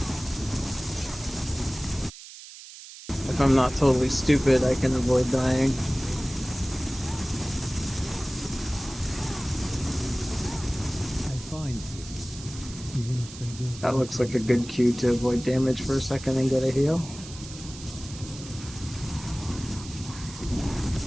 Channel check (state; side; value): noise; right; hiss, 15 dB below the sound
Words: If I'm not totally stupid, I can avoid dying. That looks like a good cue to avoid damage for a second and get a heal.